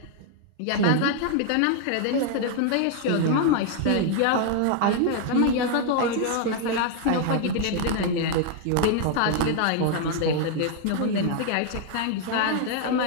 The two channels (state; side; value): different; both; correlation 0.00